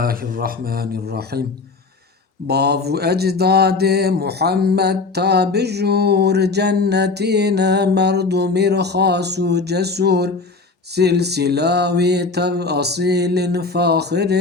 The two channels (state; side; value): quieter; right; 4.0 dB